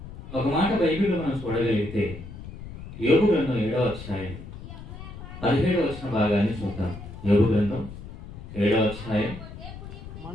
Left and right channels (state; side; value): noise; left; rumble, 13 dB below the sound